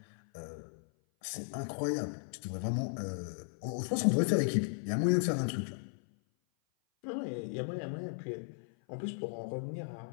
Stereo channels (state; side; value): silent; right; 54 dB below the other